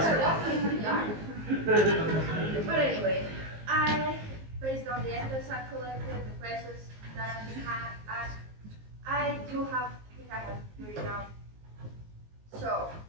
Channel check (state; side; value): late; left; 19 ms